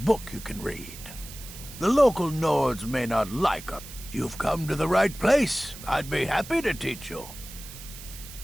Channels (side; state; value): right; noise; hiss, 14 dB below the sound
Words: you can read. The local Nords may not like us. You've come to the right place. I'd be happy to teach you.